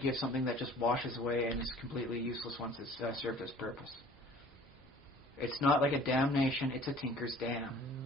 give something that just washes away and is completely useless once it's served its purpose. It's not like a damnation, it's a tinker's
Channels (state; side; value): normal; both; correlation 0.49